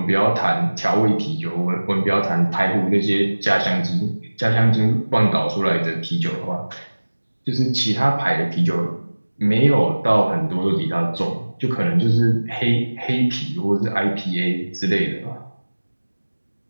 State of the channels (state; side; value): inverted; both; correlation -1.00